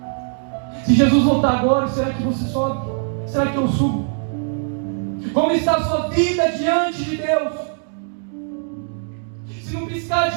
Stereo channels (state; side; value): silent; left; 61 dB below the other